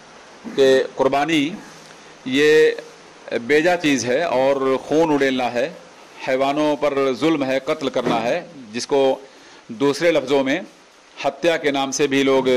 کہ قربانی یہ بیجا چیز ہے اور خون اڑیلنا ہے، حیوانوں پر ظلم ہے، قتل کرنا ہے، جس کو دوسرے لفظوں میں ہتیا کے نام سے بھی لوگ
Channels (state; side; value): identical; both; correlation 1.00